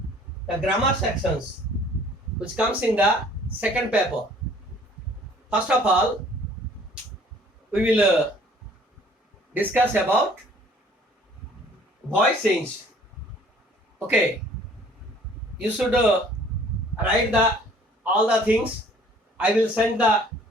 the grammar sections which comes in the second paper. First of all, we will discuss about voice change. Okay, you should write the all the things. I will send the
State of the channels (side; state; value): both; normal; correlation 0.55